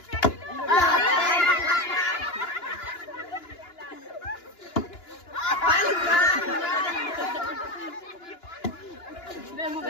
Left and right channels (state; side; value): late; right; 2.9 ms